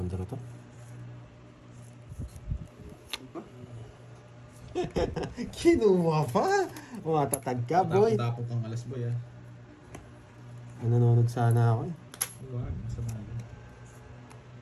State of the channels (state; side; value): identical; both; correlation 1.00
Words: draw to. Diba? Kinuha pa. Matatag ka, boy. Tapong kang alas boy ah. Nanonood sana ako, eh. Huwag, masama yun.